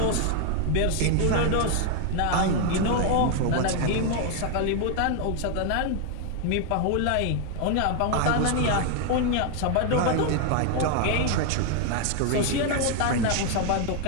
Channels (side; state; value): both; different; correlation 0.00